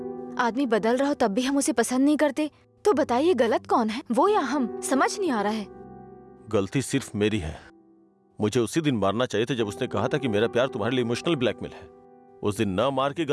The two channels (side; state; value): both; identical; correlation 1.00